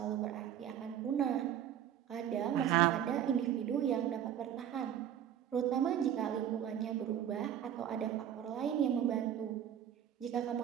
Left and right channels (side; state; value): left; quieter; 10.0 dB